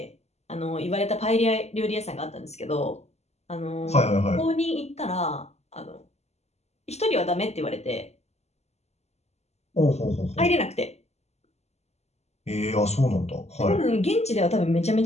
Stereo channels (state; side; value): late; right; 0.31 ms